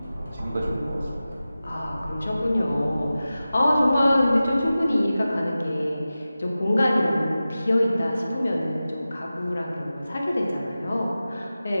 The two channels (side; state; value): both; inverted; correlation -0.95